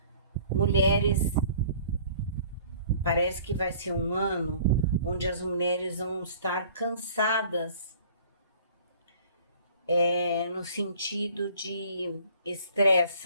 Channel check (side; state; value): both; inverted; correlation -0.52